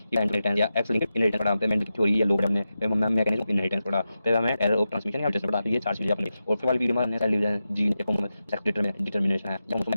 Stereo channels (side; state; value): both; inverted; correlation -0.91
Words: इनहेरिटेंस या एक्स लिंक्ड इनहेरिटेंस पढ़ा, पेमेंट की थ्योरी या लोग हमने, फिर मैकेनिज्म ऑफ इनहेरिटेंस पढ़ा, फिर हमें एरर ऑफ ट्रांसमिशन या म्यूटेशन पढ़ा। तो ये 4 चीजें अपनी। और फिर वाली वीडियो में हमने cell division, gene sex determination है,